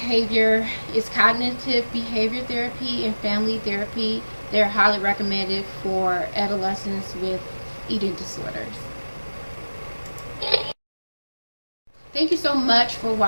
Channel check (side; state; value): both; inverted; correlation -1.00